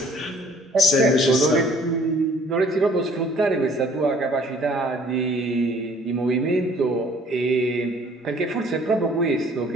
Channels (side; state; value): both; normal; correlation 0.56